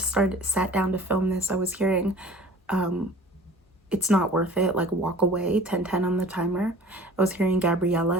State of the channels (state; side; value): normal; both; correlation 0.45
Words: sat down to film this, I was hearing It's Not Worth It, like Walk Away, 10:10 on the timer. I was hearing